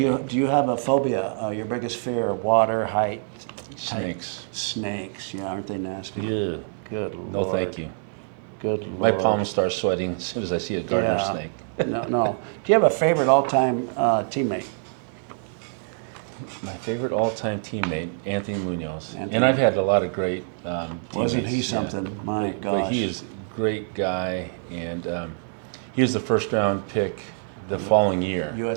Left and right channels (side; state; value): left; silent; 62 dB below the other